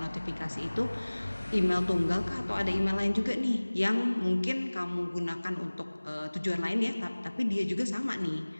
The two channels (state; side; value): inverted; both; correlation -1.00